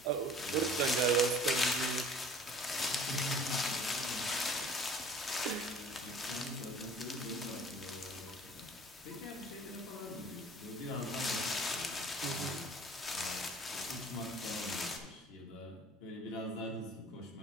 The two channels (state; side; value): normal; both; correlation 0.48